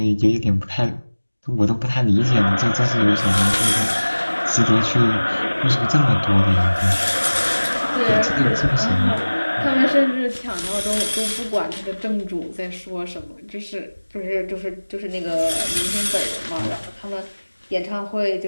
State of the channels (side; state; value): both; inverted; correlation -1.00